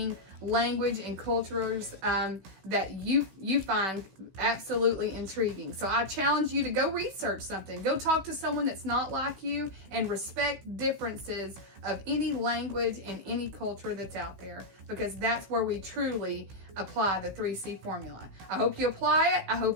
language and cultures that you find absolutely intriguing. So I challenge you to go research something. Go talk to someone that's not like you and respect differences of any language and any culture that's out there, because that's where we truly apply the 3C formula. I hope you apply it, I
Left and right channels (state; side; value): late; left; 16 ms